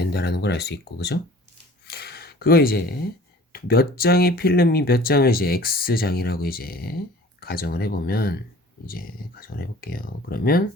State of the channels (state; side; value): normal; both; correlation 0.47